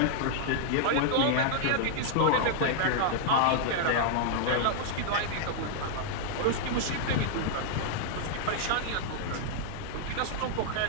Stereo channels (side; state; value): both; different; correlation -0.01